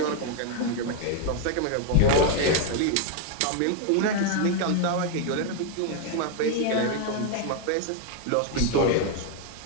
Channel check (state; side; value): different; both; correlation 0.00